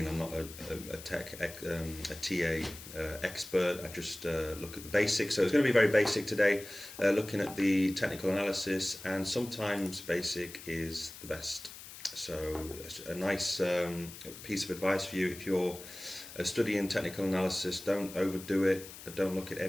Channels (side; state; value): left; noise; hiss, 14 dB below the sound